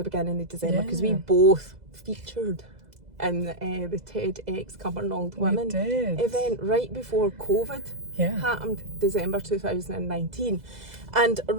of December, because we both featured in the TEDx Cumbernauld Women event right before COVID happened, December 2019. And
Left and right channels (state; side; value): late; left; 2.0 ms